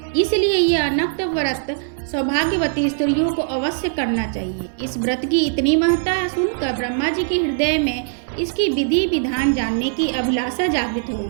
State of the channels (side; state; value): left; silent; 65 dB below the other